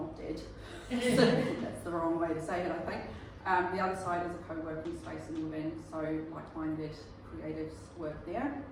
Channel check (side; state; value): both; identical; correlation 1.00